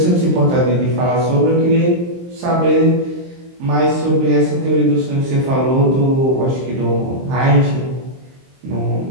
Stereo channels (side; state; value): left; late; 23 ms